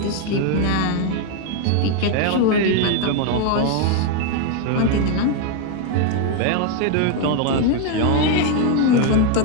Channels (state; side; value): different; both; correlation 0.01